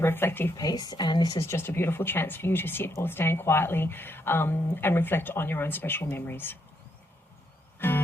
reflective piece, and this is just a beautiful chance for you to sit or stand quietly and reflect on your own special memories.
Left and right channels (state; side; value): normal; both; correlation 0.77